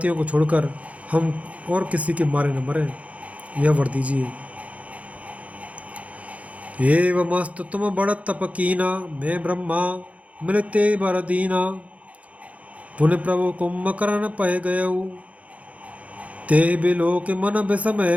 को छोड़कर हम और किसी के मारे न मरें, यह वर दीजिए। एवमस्तु तुम बड़ तप कीना, मैं ब्रह्मा मिलते बर दीना। पुण्य प्रभु कुंभकर्ण पय गयऊ, ते बिलो के मन विषमय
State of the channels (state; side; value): late; left; 0.066 ms